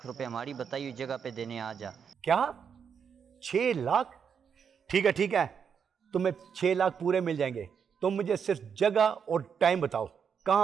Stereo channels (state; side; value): quieter; left; 7.0 dB